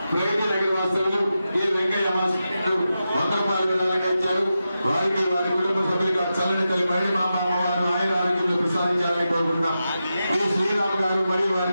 వాసులు ఈ వెంకయ్య మాస్టర్లు 100 రూపాయలు ఇచ్చారు. వారికి వారి కుటుంబ సభ్యులుగా చల్లని తల్లి మరడి మా అమ్మవారు ఆయుర ఆరోగ్యాలు ప్రసాదించాలని కోరుకుంటున్నాం. ఈ శ్రీరామ్ గారు మరియు వారి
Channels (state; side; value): inverted; both; correlation -0.90